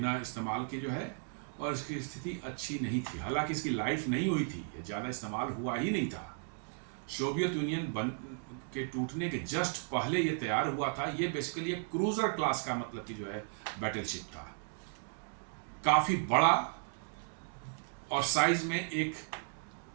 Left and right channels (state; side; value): silent; left; 54 dB below the other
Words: इस्तेमाल के जो है, और इसकी स्थिति अच्छी नहीं थी। हालांकि इसकी लाइफ नहीं हुई थी, ये ज़्यादा इस्तेमाल हुआ ही नहीं था। सोवियत यूनियन के टूटने के जस्ट पहले ये तैयार हुआ था। ये बेसिकली एक क्रूजर क्लास का मतलब कि जो है बैटलशिप था, काफ़ी बड़ा, और साइज में एक